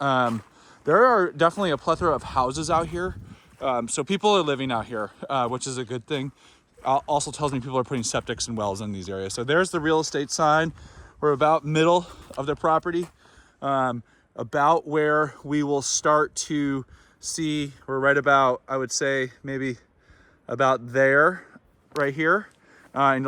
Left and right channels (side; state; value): both; identical; correlation 1.00